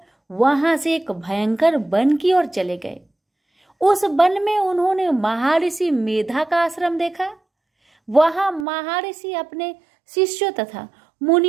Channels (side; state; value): left; drops out; at 8.7 s